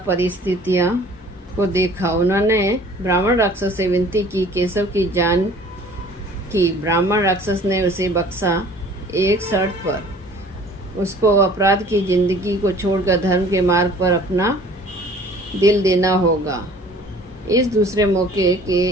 को देखा। उन्होंने ब्राह्मण राक्षस से विनती की, केशव की जान की। ब्राह्मण राक्षस ने उसे बख्शा, एक शर्त पर। उसको अपराध की जिंदगी को छोड़कर धर्म के मार्ग पर अपना दिल देना होगा। इस दूसरे मौके के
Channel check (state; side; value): normal; both; correlation 0.50